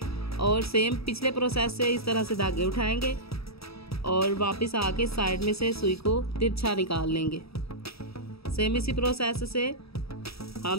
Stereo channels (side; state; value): right; late; 0.77 ms